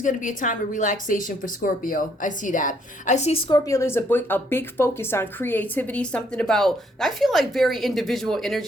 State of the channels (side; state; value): both; normal; correlation 0.69